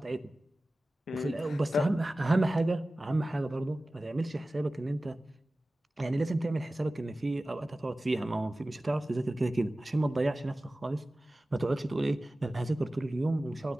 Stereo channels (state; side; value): normal; both; correlation 0.96